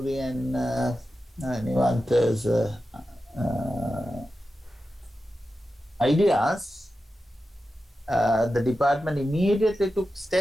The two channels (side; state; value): both; normal; correlation 0.92